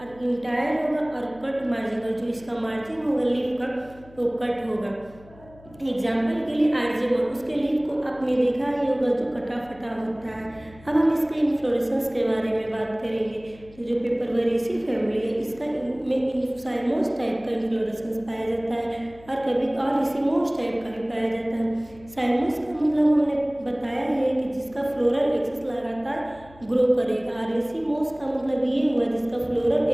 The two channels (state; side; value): noise; left; hum, 23 dB below the sound